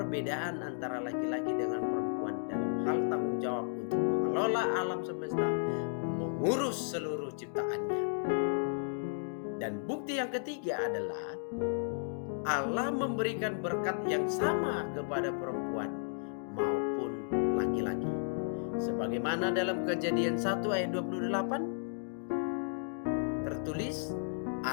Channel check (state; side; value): silent; right; digital silence